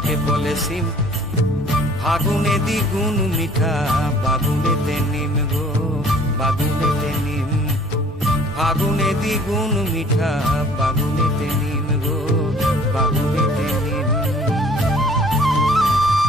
বলে সিম, ফাগুনে দ্বিগুণ মিঠা বাগুনেতে নিম গো বাগুনেতে নিম, ফাগুনে দ্বিগুণ মিঠা বাগুনেতে নিম গো বাগুনেতে নিম।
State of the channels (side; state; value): both; normal; correlation 0.54